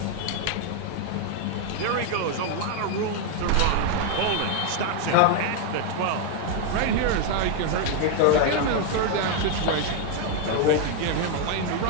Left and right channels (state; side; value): different; both; correlation 0.00